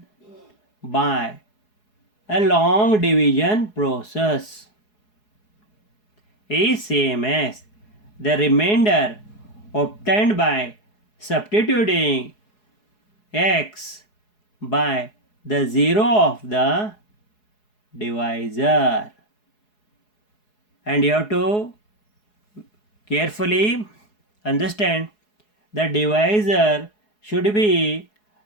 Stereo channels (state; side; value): late; right; 4.7 ms